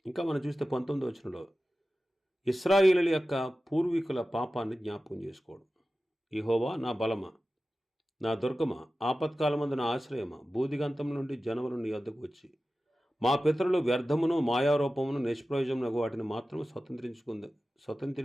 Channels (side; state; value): both; normal; correlation 0.95